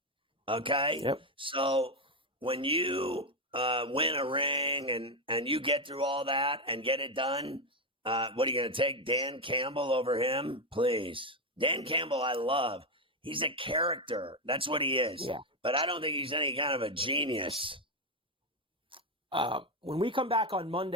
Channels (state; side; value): normal; both; correlation 0.08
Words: Okay? Yep. So when you win a ring and you get through all that and get it done, what are you going to take Dan Campbell over him? Please. Dan Campbell, I love. He's a character. That's what he is. Yeah. But I don't think he's any kind of a genius. When we come back on